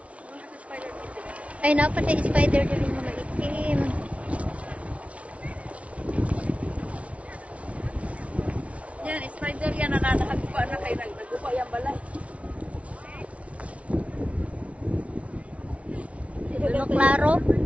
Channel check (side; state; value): left; late; 0.064 ms